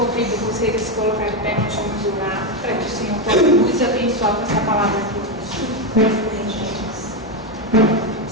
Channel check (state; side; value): normal; both; correlation 0.08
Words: convido vocês a se colocar de pé, nós vamos orar, para que o Senhor possa nos abençoar com essa palavra aqui.